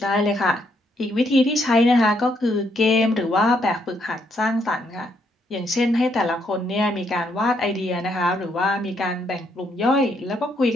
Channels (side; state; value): both; normal; correlation 0.74